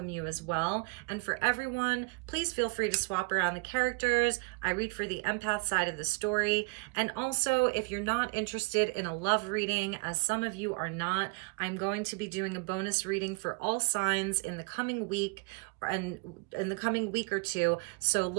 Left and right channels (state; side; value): quieter; left; 31.3 dB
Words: you as well. And for everyone, please feel free to swap around the characters. I read for the empath side of the story. And also, if you're not interested in a love reading, as some of you are not, I'm going to be doing a bonus reading for all signs in the coming week, and in the coming week or two, so